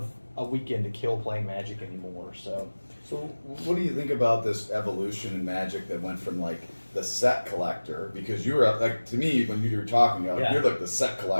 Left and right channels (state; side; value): inverted; both; correlation -1.00